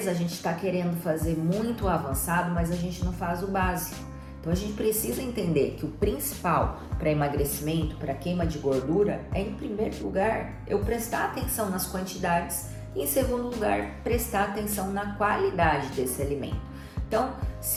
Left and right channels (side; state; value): both; identical; correlation 1.00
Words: a gente está querendo fazer muito avançado, mas a gente não faz o básico. Então a gente precisa entender que o principal para emagrecimento, para queima de gordura, é em primeiro lugar eu prestar atenção nas quantidades e em segundo lugar prestar atenção na qualidade desse alimento. Então,